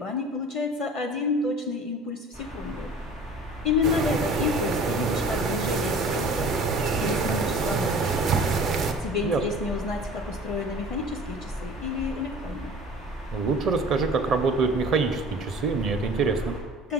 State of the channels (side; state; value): both; normal; correlation 0.44